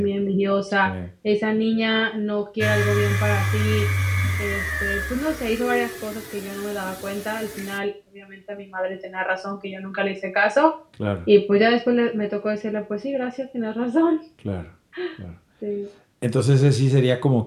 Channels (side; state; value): both; identical; correlation 1.00